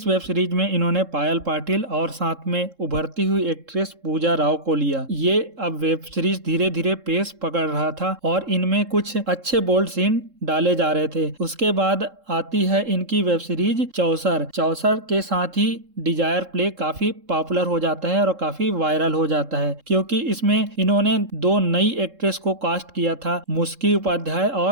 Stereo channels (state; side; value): late; left; 3.7 ms